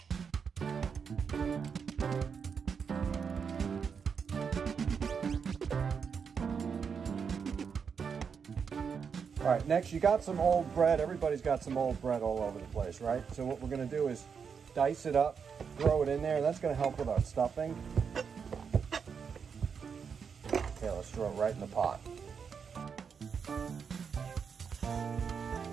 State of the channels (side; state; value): left; quieter; 6.4 dB